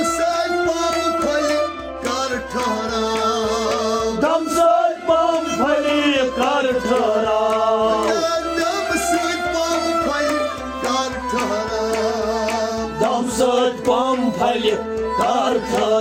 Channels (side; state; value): both; identical; correlation 1.00